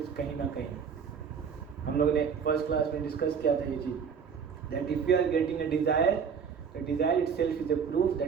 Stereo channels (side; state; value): left; quieter; 6.7 dB